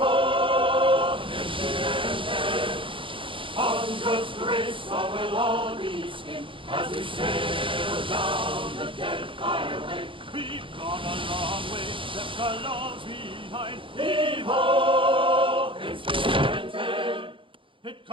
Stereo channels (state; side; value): late; left; 0.25 ms